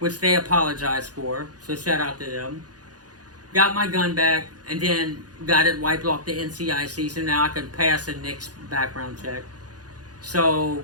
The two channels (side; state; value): left; late; 0.68 ms